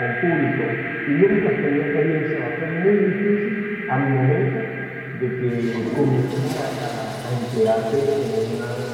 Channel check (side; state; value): both; identical; correlation 1.00